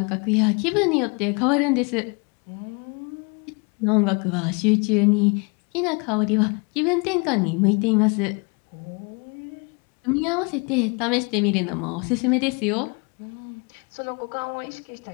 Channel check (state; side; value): quieter; right; 31.7 dB